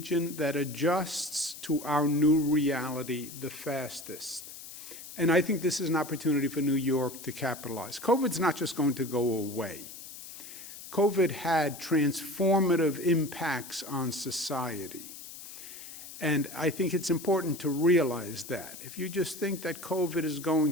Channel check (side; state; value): left; noise; hiss, 13 dB below the sound